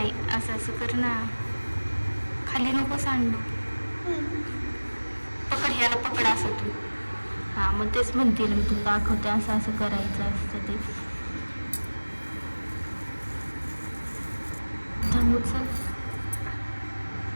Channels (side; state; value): both; inverted; correlation -1.00